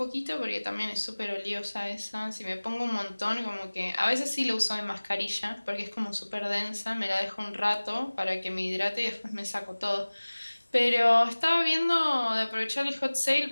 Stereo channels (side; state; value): both; inverted; correlation -1.00